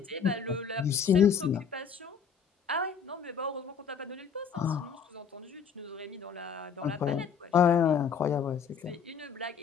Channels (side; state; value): right; quieter; 6.7 dB